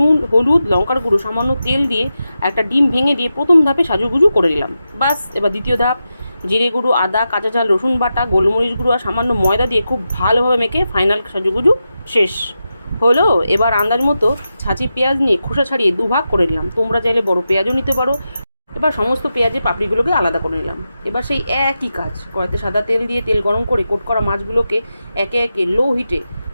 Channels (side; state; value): both; inverted; correlation -0.90